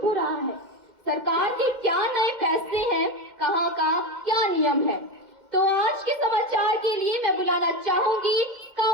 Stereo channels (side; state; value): left; late; 2.1 ms